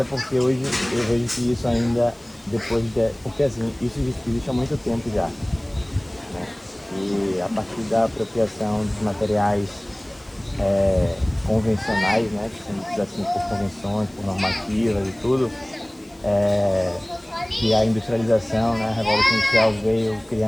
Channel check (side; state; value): left; noise; hiss, 30 dB below the sound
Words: porque hoje eu vejo que isso ainda, porque assim, isso existe há muito tempo já, né? E a partir da apropriação dos materiais convencionais, né, que são ditos assim por convenções, por normativas e tudo, que a industrialização, né, a Revolução Industrial veio